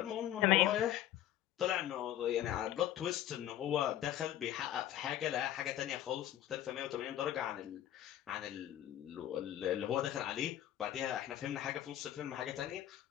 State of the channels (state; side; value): quieter; right; 12.4 dB